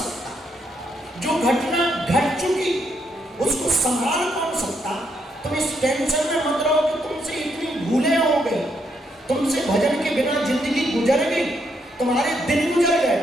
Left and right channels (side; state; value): both; normal; correlation 0.76